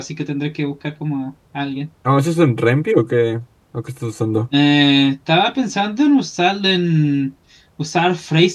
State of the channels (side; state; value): both; identical; correlation 1.00